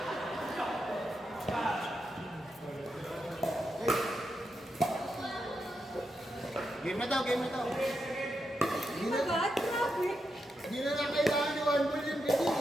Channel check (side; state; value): both; normal; correlation 0.85